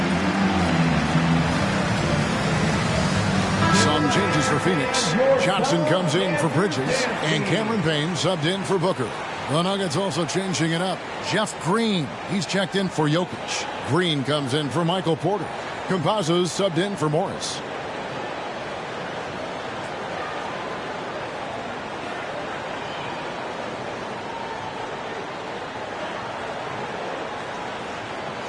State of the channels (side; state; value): both; identical; correlation 1.00